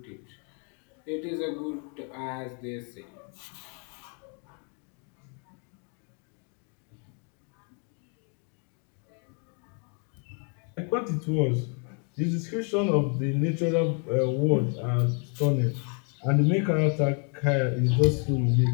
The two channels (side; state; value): right; quieter; 39.1 dB